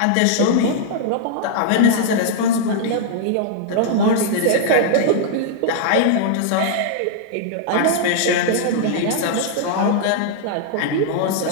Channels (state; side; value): different; both; correlation -0.01